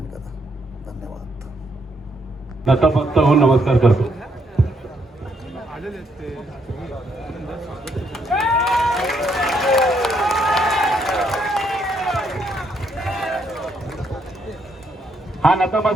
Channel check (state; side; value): normal; both; correlation 0.74